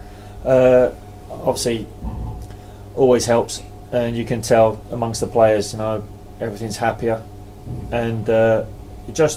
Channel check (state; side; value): identical; both; correlation 1.00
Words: Obviously, always helps, and you can tell amongst the players, everything's happier, and it